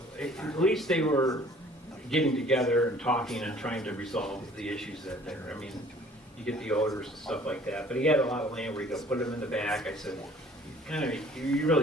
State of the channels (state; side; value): normal; both; correlation 0.53